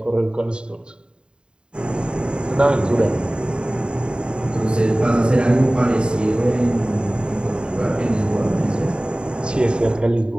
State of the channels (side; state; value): left; late; 0.050 ms